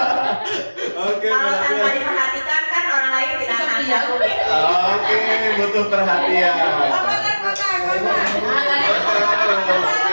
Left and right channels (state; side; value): inverted; both; correlation -1.00